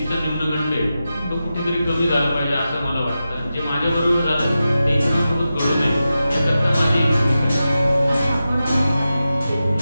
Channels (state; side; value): inverted; both; correlation -0.92